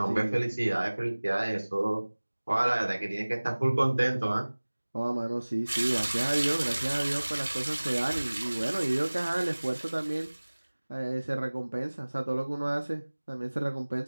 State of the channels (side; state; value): both; inverted; correlation -1.00